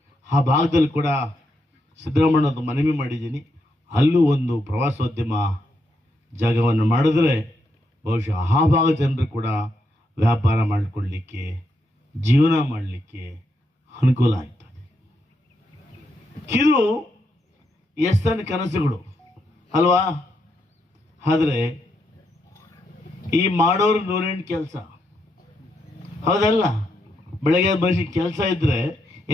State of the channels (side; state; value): both; normal; correlation 0.80